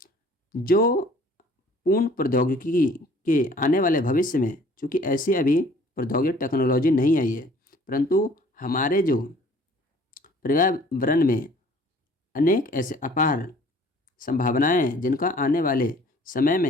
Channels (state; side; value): normal; both; correlation 0.54